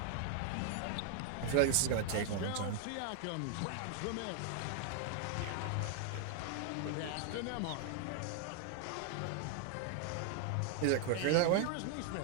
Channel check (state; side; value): different; both; correlation 0.00